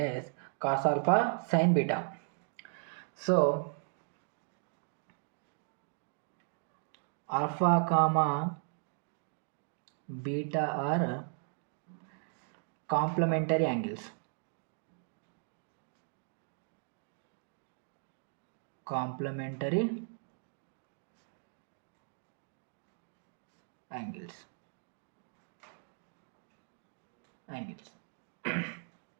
cos alpha sine beta. So alpha comma beta are complementary angles. Complementary angles.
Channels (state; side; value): silent; left; 53 dB below the other